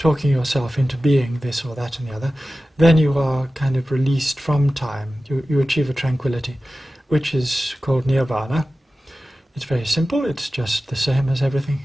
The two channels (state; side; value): normal; both; correlation 0.95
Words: yourself into being this or that and the other, then you are kind of released from time. You achieve a tranquility, which is called nirvana. It's very simple, it's just the same as everything